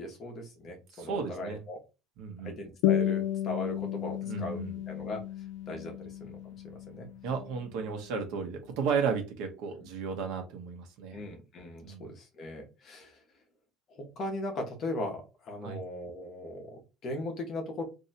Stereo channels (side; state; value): both; normal; correlation 0.32